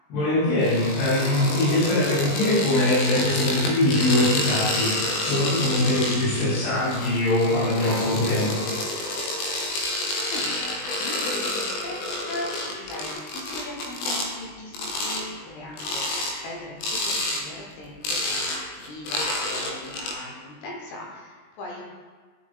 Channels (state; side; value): late; right; 20 ms